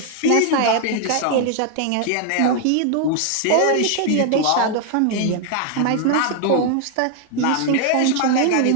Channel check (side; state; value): both; different; correlation 0.00